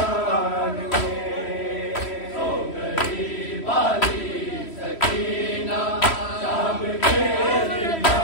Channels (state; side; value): late; right; 3.1 ms